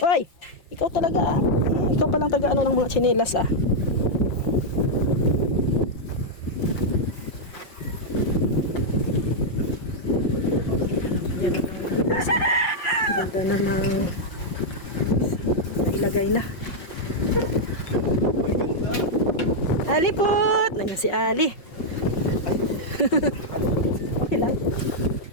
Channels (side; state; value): right; late; 5.5 ms